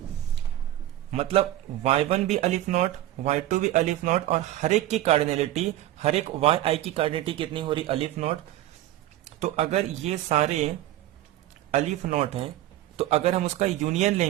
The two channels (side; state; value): left; quieter; 14.3 dB